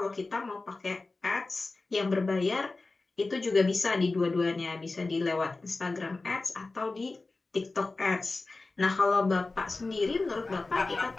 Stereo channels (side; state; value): right; quieter; 3.5 dB